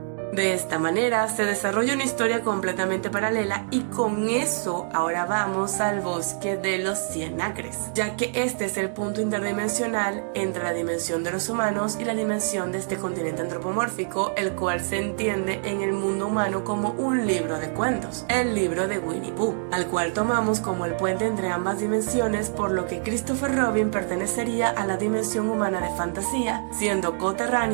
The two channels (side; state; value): left; silent; digital silence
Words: De esta manera se desarrolla una historia completamente paralela y con eso ahora vamos al bosque de los 100 acres, ya que este es el punto interdimensional entre la dimensión de los humanos y la dimensión de este continente antropomórfico, el cual se entiende en el mundo humano como un libro de cuentos, el libro de Winnie Pooh, al cual tomamos como el puente entre ambas dimensiones, por lo que Christopher Robin pertenecería a la dimensión humana de fantasía, siendo